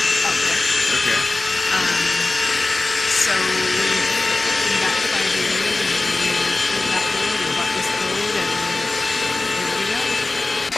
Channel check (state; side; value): quieter; right; 3.2 dB